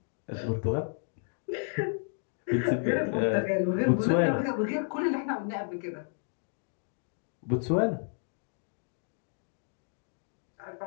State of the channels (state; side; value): silent; right; 57 dB below the other